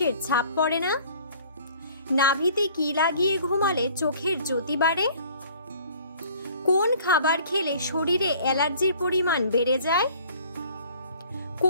ছাপ পড়ে না? নাভিতে কি লাগিয়ে ঘুমালে চোখের জ্যোতি বাড়ে? কোন খাবার খেলে শরীরে অ্যালার্জির পরিমাণ বেড়ে যায়?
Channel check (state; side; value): inverted; both; correlation -0.53